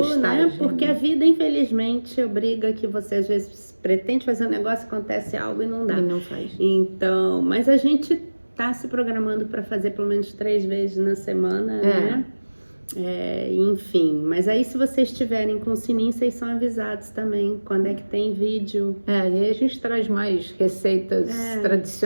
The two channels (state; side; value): inverted; both; correlation -1.00